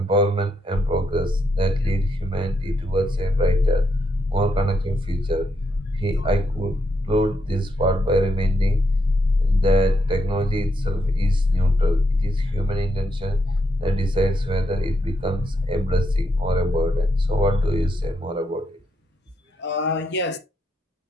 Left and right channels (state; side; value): normal; both; correlation 0.79